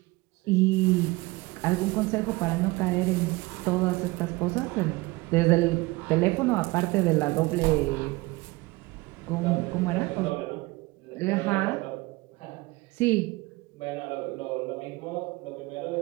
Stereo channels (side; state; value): left; quieter; 22.3 dB